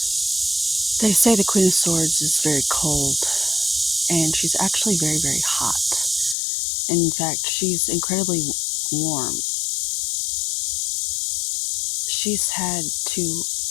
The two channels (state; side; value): drops out; right; at 6.4 s